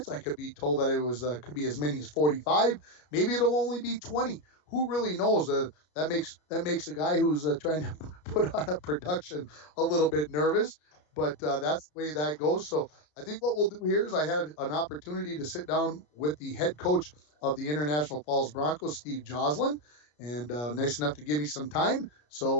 I could be told that it was could be as many as 45. Maybe it'll only be 20. Who really knows? That makes a guy who's trying to put on a production a little bit nervous. But that's the way that goes. So I think what we'll do here is I had an opportunity to sit down with the head coach of the International Falls Broncos, Steve Joslin, and nice enough to give me some time.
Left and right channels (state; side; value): late; right; 33 ms